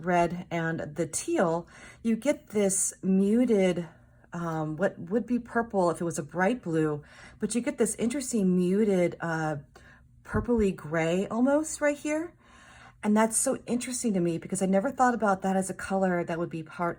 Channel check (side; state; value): both; identical; correlation 1.00